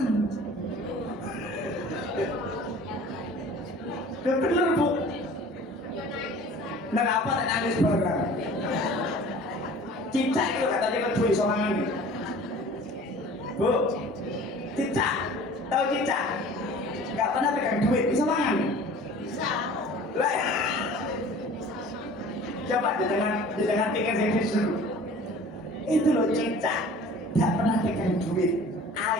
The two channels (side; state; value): both; normal; correlation 0.45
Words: Udah bener Bu. Kenapa tak nangis barang? Cicak itu katanya kan duit sorangan nih. Bu, cicak, tahu cicak? Gak pernah pegang duit, bisa mangan? Bisa. Lah, coba di tengah pikir saya disuruh. Itu loh cicak, gak pernah pegang duit.